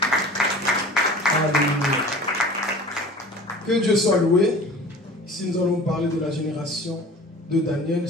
Alléluia. Que Dieu soit loué. Ici nous allons parler de la génération de Daniel.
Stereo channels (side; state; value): both; normal; correlation 0.42